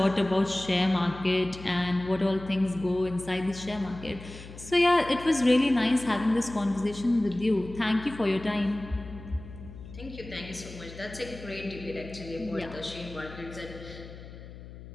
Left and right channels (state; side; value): noise; left; hum, 15 dB below the sound